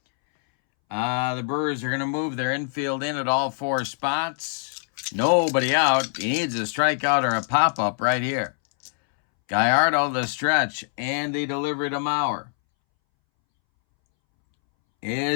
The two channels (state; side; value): silent; right; 63 dB below the other